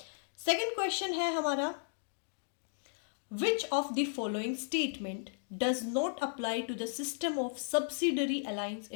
सेकेंड क्वेश्चन है हमारा which of the following statement does not apply to the system of subsidiary alliance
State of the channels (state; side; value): silent; right; digital silence